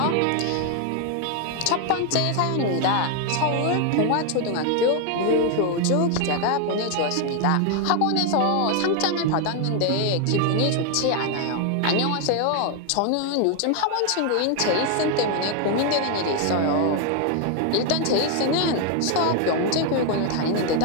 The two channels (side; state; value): both; different; correlation 0.01